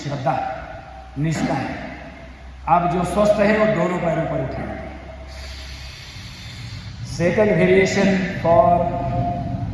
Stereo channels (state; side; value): identical; both; correlation 1.00